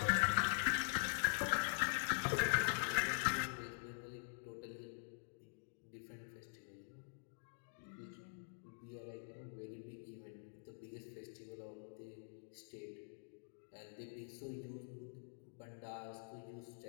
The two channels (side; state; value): right; silent; digital silence